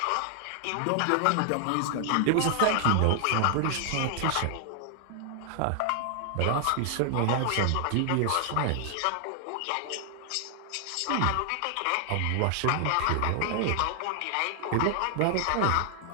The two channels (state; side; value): different; both; correlation 0.00